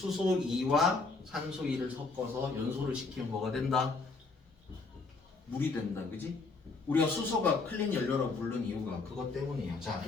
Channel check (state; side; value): quieter; right; 4.0 dB